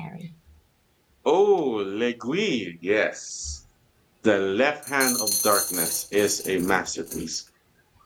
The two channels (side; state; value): both; identical; correlation 1.00